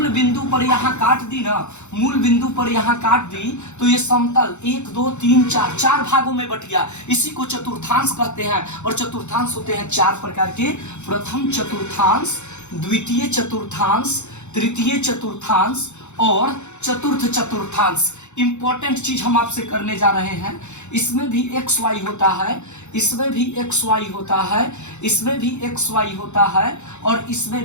बिंदु पर यहां काट दी ना, मूल बिंदु पर यहां काट दी, तो ये समतल 1 2 3 4 चार भागों में बट गया। इसी को चतुर्थांश कहते हैं। और चतुर्थांश होते हैं चार प्रकार के। प्रथम चतुर्थांश, द्वितीय चतुर्थांश, तृतीय चतुर्थांश और चतुर्थ चतुर्थांश। इंपॉर्टेंट चीज हम आपसे करने जा रहे हैं। इसमें भी एक्स वाई होता है, इसमें भी एक्स वाई होता है, इसमें भी एक्स वाई होता है, और इसमें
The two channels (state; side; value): late; right; 0.83 ms